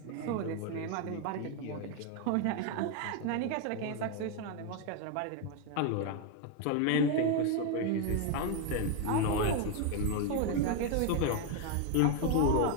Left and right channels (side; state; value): both; different; correlation 0.01